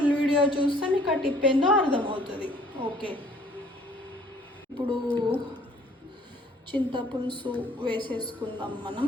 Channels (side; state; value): both; normal; correlation 0.57